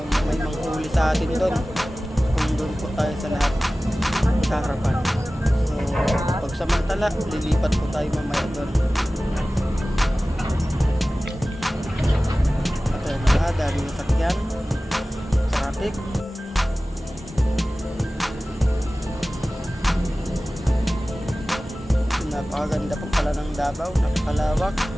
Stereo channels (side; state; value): both; normal; correlation 0.97